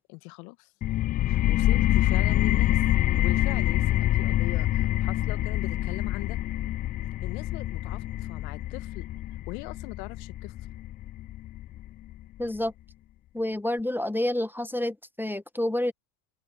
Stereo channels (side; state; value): right; quieter; 9.9 dB